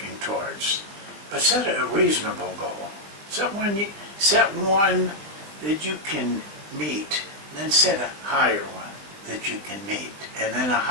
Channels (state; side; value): late; left; 20 ms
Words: towards. But set a reasonable goal. Set one that you can meet, then set a higher one that you can meet, and then a